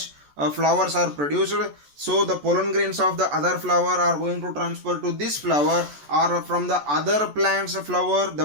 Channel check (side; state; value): left; late; 14 ms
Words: flowers are produced, so the pollen grains of the other flower are going to transfer to this flower, or from the other plant's flower